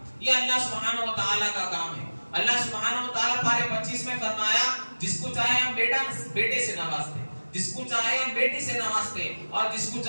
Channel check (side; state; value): both; inverted; correlation -1.00